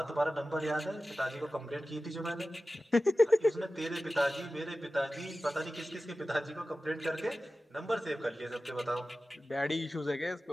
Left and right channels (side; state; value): both; normal; correlation 0.95